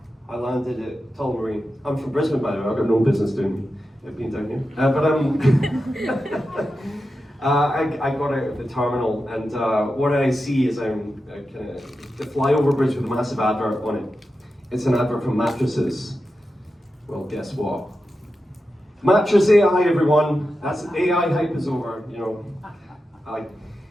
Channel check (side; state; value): both; normal; correlation 0.90